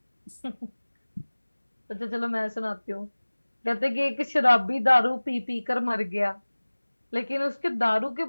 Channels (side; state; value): both; inverted; correlation -1.00